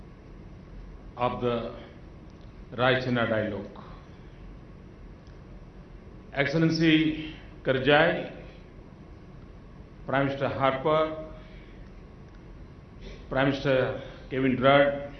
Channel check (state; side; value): identical; both; correlation 1.00